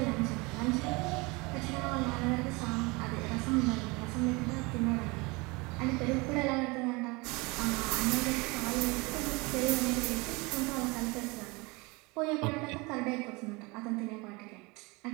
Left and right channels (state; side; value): quieter; left; 25.9 dB